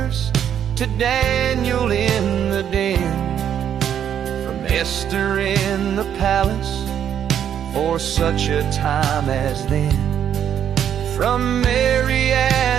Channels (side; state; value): left; quieter; 9.3 dB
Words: to Daniel in the den, from Esther in the palace for such a time as then. From Mary